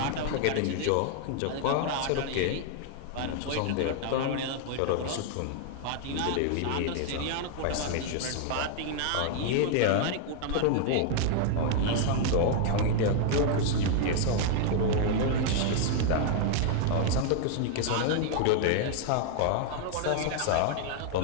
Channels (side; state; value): both; different; correlation 0.00